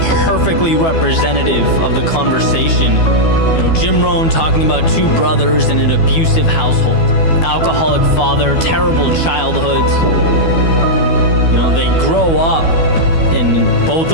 perfectly representative of the conversation. You know, Jim Rohn talking about two brothers in an abusive household. Alcoholic father, terrible childhoods. You know, they grow up and both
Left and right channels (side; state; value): right; late; 12 ms